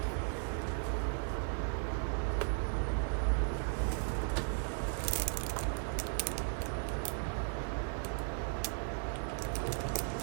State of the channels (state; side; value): silent; left; 54 dB below the other